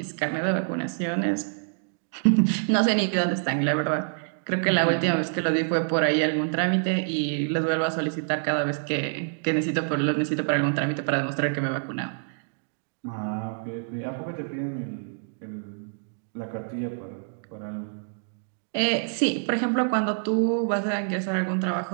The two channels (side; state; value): left; silent; digital silence